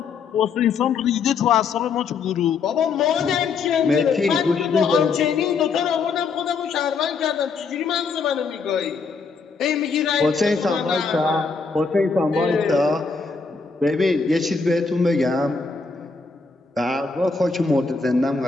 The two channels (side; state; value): right; quieter; 4.9 dB